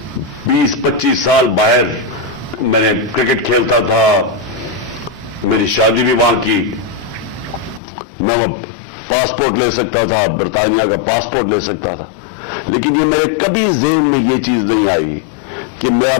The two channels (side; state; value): right; drops out; at 7.8 s